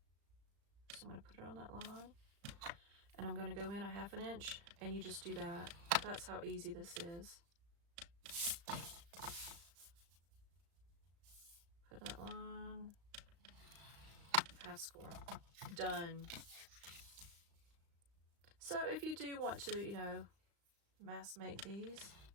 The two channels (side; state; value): left; late; 35 ms